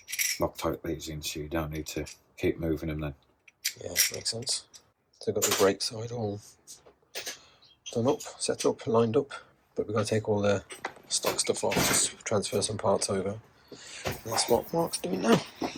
Loctite these in so you don't need to keep moving them then. Yeah, makes sense. So I've got the brake side all done up, set up, lined up, but we're going to take all the stock stuff off, just transfer some parts over. And that's what Mark's doing now.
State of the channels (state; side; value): identical; both; correlation 1.00